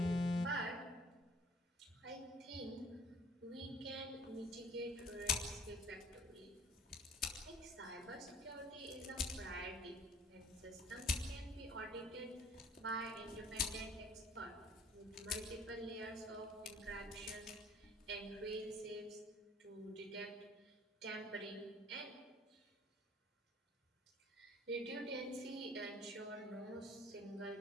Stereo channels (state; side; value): normal; both; correlation 0.53